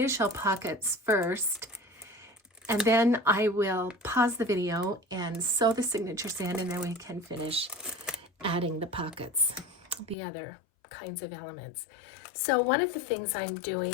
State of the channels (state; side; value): drops out; right; at 10.2 s